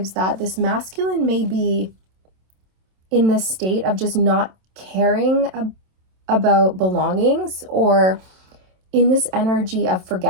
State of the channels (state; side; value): late; left; 27 ms